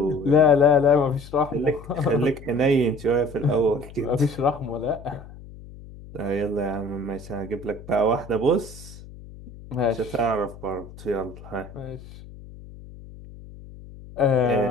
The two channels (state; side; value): noise; left; hum, 17 dB below the sound